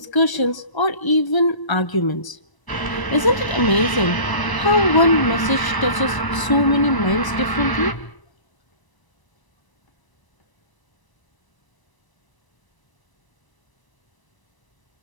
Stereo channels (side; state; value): right; late; 1.0 ms